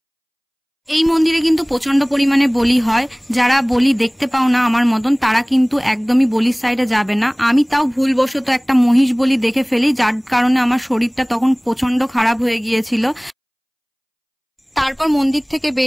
এই মন্দিরে কিন্তু প্রচন্ড পরিমাণে বলি হয়। যারা বলি দেখতে পাও না আমার মতন, তারা কিন্তু একদমই বলির সাইডে যাবে না। আমি তাও ভুলবশত একটা মহিষ বলি দেখে ফেলি, যার কারণে আমার শরীরটা তখন প্রচন্ড খারাপ হয়ে গিয়েছিল। তারপর মন্দির থেকে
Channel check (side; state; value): both; identical; correlation 1.00